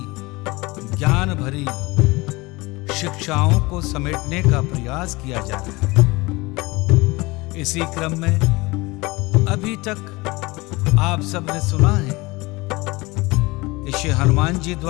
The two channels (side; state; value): right; quieter; 23.0 dB